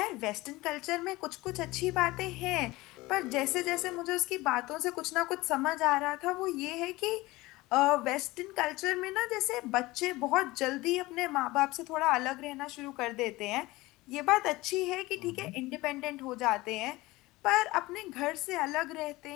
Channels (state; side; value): quieter; right; 20.2 dB